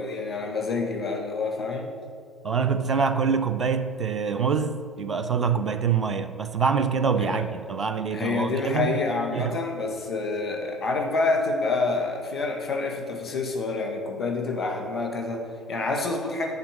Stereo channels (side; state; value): both; normal; correlation 0.37